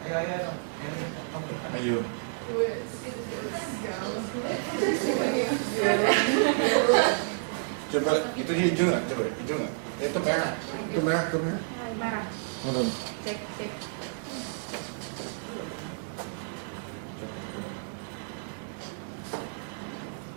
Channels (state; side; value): silent; left; digital silence